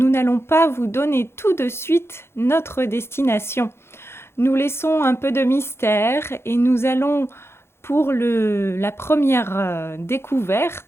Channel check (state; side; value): late; right; 0.12 ms